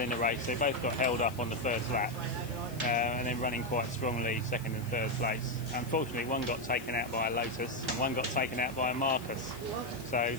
the race, they both got held up on the first lap. And then running quite strongly second and third place. Unfortunately, one got taken out by a Lotus and one got taken out by a Marcus. So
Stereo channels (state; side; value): noise; left; hiss, 18 dB below the sound